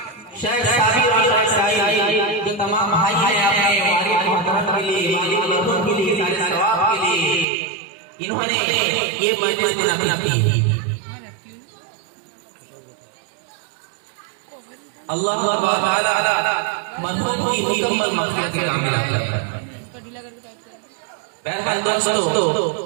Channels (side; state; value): left; drops out; at 7.5 s